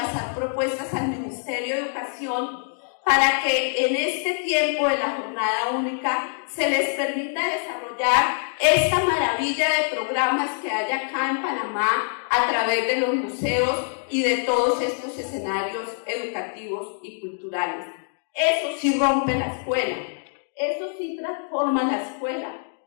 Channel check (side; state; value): right; silent; digital silence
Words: propuestas al Ministerio de Educación para que en este tiempo de la jornada única se les permita desarrollar esta maravilla de programas que hay acá en Panamá a través de los museos y de todos estos escenarios educativos y culturales. Eso sí rompe la escuela, eso sí transforma la escuela,